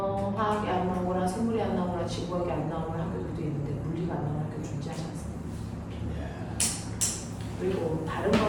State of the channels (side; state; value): both; identical; correlation 1.00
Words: 화학이 안 나오거나 생물이 안 나오거나 지구학이 안 나오는 학교들도 있는데 물리가 안 나오는 학교 존재하지 않습니다. 그리고 다른